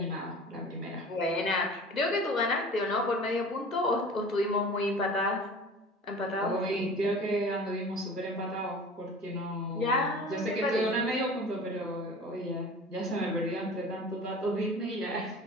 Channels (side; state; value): both; normal; correlation 0.41